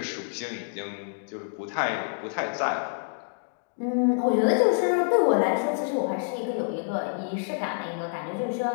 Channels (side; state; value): right; silent; 60 dB below the other